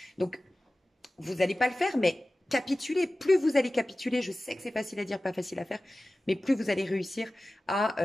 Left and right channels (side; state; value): both; normal; correlation 0.96